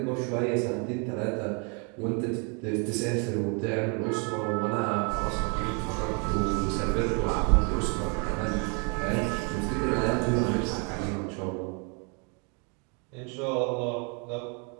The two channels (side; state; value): left; quieter; 35.7 dB